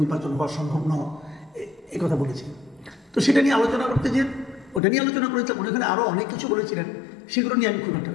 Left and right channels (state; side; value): drops out; right; at 4.8 s